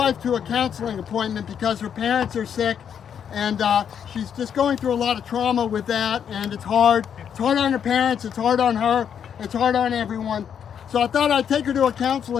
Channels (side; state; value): right; quieter; 8.2 dB